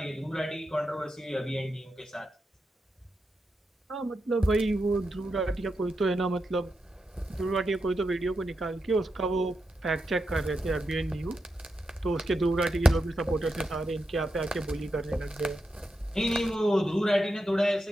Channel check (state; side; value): normal; both; correlation 0.87